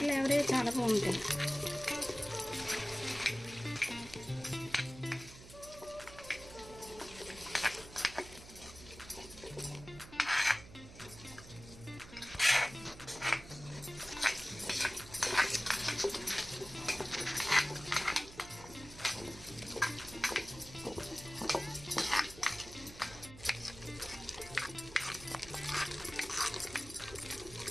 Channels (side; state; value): right; noise; hum, 17 dB below the sound